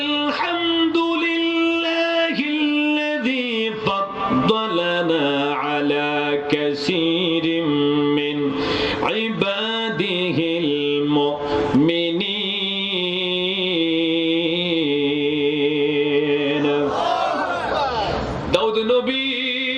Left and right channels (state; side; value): identical; both; correlation 1.00